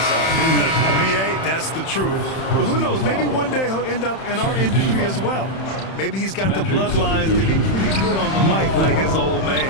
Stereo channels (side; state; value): right; late; 31 ms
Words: B.A., that's the truth. But who knows, maybe one day he'll end up in our industry as well. Maybe he's got the bloodlines to be pretty good on the mic like his old